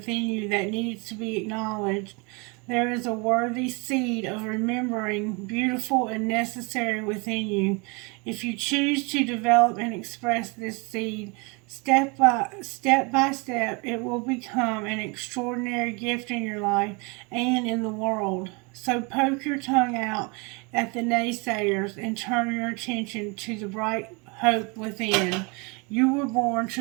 you that needs to be acknowledged. There is a worthy seed of remembering, beautiful and necessary within you. If you choose to develop and express this seed, step by step, it will become an extraordinary gift in your life and in the world. So poke your tongue out at the naysayers and turn your attention to the bright hope within. You were born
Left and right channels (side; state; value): left; quieter; 30.1 dB